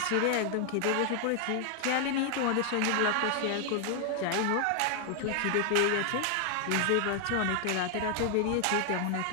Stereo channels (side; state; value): both; different; correlation 0.00